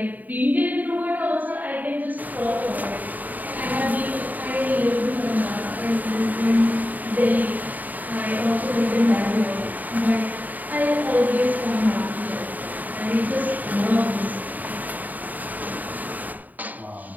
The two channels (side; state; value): left; late; 0.082 ms